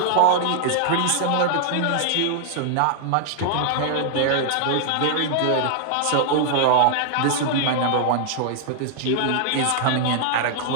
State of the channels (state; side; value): different; both; correlation 0.00